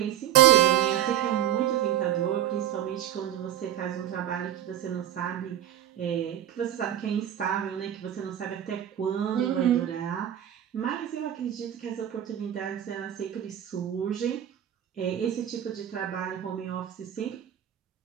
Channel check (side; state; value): left; quieter; 11.1 dB